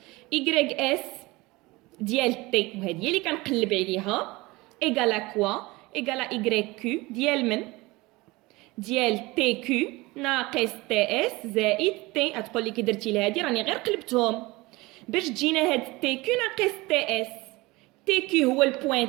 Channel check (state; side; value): quieter; left; 22.0 dB